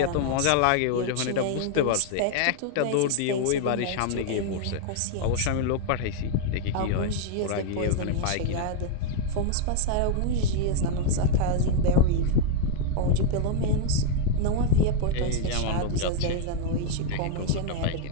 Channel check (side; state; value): both; different; correlation 0.00